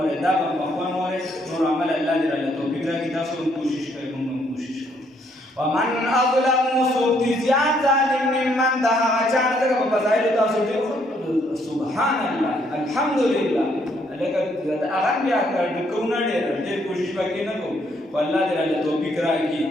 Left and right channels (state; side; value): normal; both; correlation 0.70